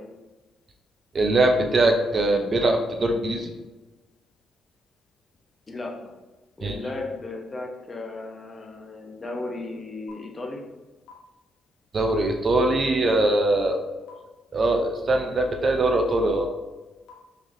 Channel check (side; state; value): both; normal; correlation 0.79